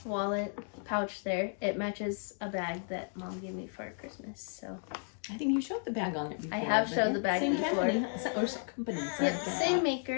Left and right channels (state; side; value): silent; right; 55 dB below the other